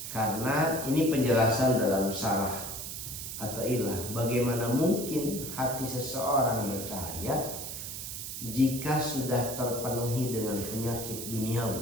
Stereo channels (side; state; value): right; noise; hiss, 7 dB below the sound